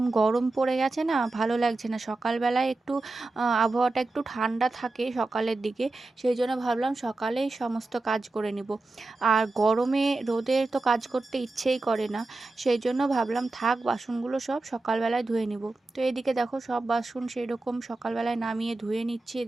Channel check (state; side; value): quieter; left; 3.2 dB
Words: গরম পড়ে গেছে না, ভালো লাগছে না। সকালবেলায় একটু আবহাওয়াটা একটু ঠান্ডা থাকে সকালের দিকে, সেই জন্য ভাবলাম সকালেই সমস্ত কাজ করে নিব। আর গরমে রোদে তো কাজ করতে ইচ্ছেই করে না, সেই জন্য ভাবলাম থাক, বাসনগুলো সব সকালবেলায় ধুয়ে নিব। তো এদিকে দেখো সব বাসন সেই রকম সকালবেলায় নামিয়ে ধুয়ে নিচ্ছি